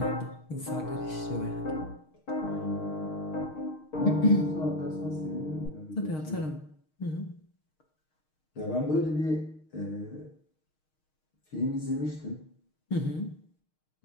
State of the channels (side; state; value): right; late; 6.5 ms